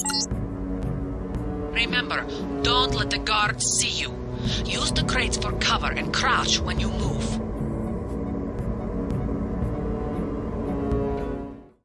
Remember, don't let the guards see you. Use the crates for cover and crouch when you move.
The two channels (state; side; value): identical; both; correlation 1.00